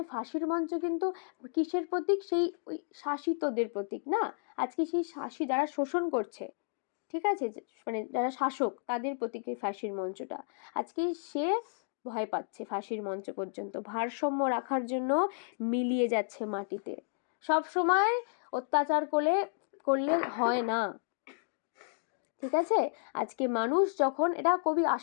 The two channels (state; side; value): silent; right; digital silence